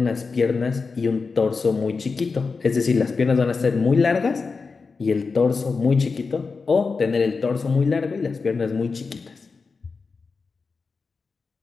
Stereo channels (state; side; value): quieter; right; 4.6 dB